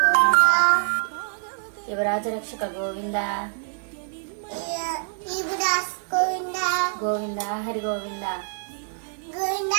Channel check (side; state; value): left; silent; digital silence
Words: యువరాజ రక్షక గోవింద ఇబ్రాస్ గోవింద గోవింద హరి గోవింద గోవింద